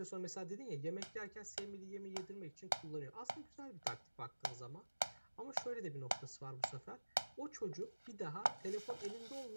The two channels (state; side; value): inverted; both; correlation -1.00